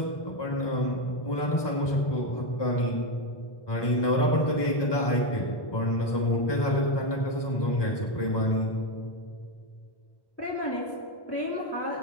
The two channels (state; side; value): late; right; 1.2 ms